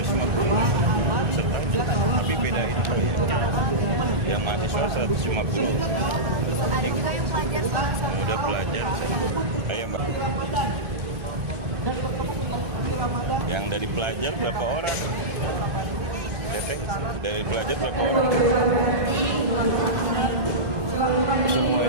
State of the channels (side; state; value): left; late; 2.5 ms